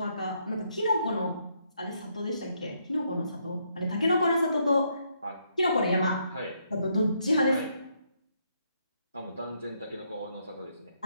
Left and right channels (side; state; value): both; inverted; correlation -0.75